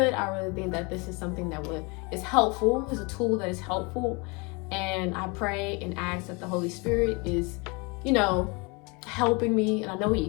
I really think that this is something that is helpful, is a tool that is helpful. And I pray and ask that the Holy Spirit is, helping me. And I know he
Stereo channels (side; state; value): right; quieter; 29.1 dB